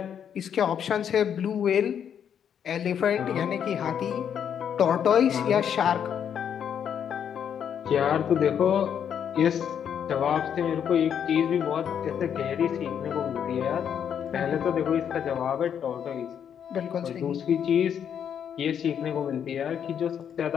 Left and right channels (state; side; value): quieter; right; 8.5 dB